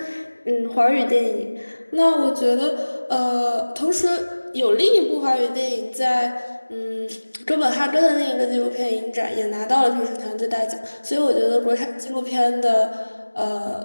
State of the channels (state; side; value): inverted; both; correlation -1.00